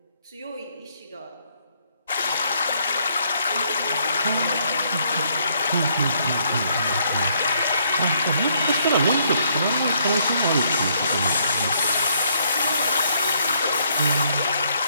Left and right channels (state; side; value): inverted; both; correlation -0.70